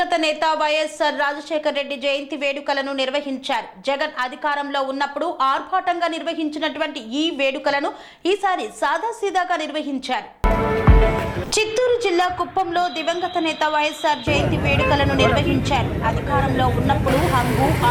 నేత వైఎస్ఆర్ రాజశేఖర రెడ్డి జయంతి వేడుకలను నిర్వహించారు. జగన్ అధికారంలో ఉన్నప్పుడు ఆర్భాటంగా నిర్వహించినటువంటి ఈ వేడుకలను ఈసారి సాదాసీదాగా నిర్వహించారు. చిత్తూరు జిల్లా కుప్పంలో దివంగత నేత వైఎస్ఆర్ జయంతి వేడుకలను నిర్వహించారు. అధికారంలో ఉన్నప్పుడు హంగు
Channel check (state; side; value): identical; both; correlation 1.00